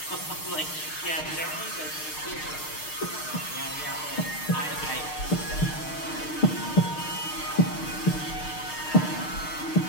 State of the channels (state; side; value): late; right; 6.5 ms